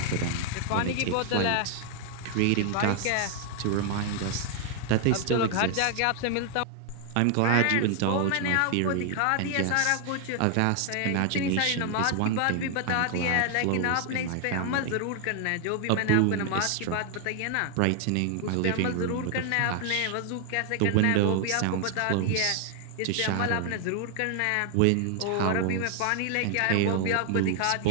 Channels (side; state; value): both; different; correlation 0.00